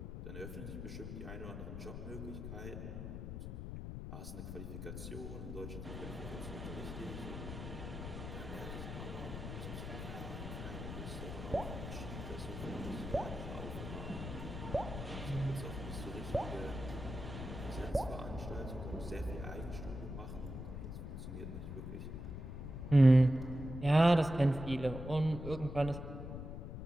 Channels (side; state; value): left; noise; rumble, 7 dB below the sound